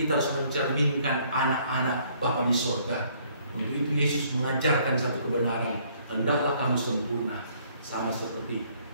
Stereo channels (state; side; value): inverted; both; correlation -0.64